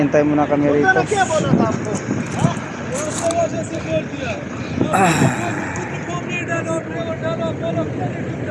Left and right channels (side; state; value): both; identical; correlation 1.00